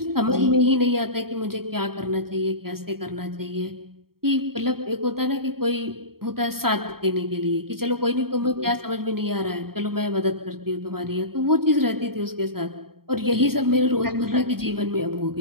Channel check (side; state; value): left; late; 0.94 ms